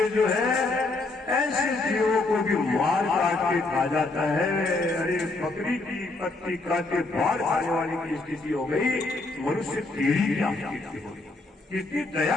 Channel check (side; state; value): right; quieter; 3.2 dB